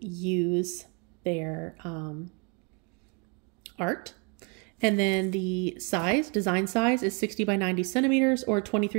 use their art. And then the size, design size, is 60 by 90 centimeters or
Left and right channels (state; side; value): quieter; left; 33.7 dB